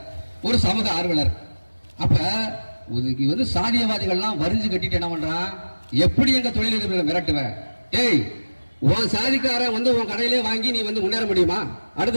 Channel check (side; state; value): both; inverted; correlation -1.00